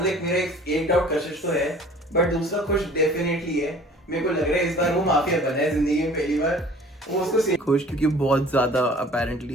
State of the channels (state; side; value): normal; both; correlation 0.49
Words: लाइक मेरा एक डाउट कशिश तो है, बट दूसरा खुश डेफिनेटली है। मेरे को लग रहा है इस बार वो माफिया बना है जिंदगी में पहली बार। वो उसको खुश क्योंकि बहुत ज्यादा